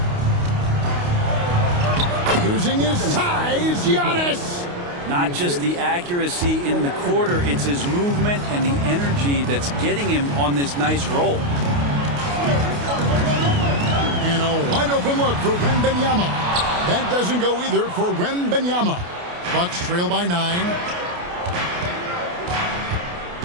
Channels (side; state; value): left; late; 28 ms